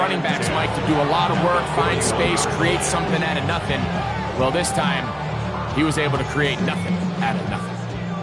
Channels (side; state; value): both; identical; correlation 1.00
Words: backs, Mike, to do a lot of work, find space, create something out of nothing. Well, this time, he was able to create nothing out of nothing.